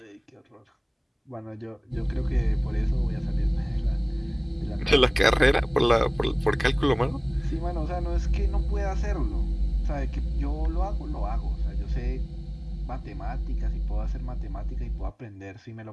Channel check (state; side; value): identical; both; correlation 1.00